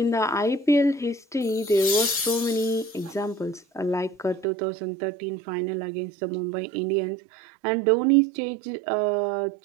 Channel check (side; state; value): left; drops out; at 4.5 s